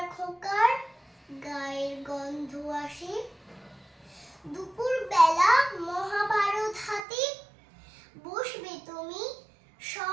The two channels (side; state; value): left; drops out; at 7.1 s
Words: খোকার গায়ের গন্ধ আসে। দুপুর বেলা মহাভারত হাতে বসবে তুমি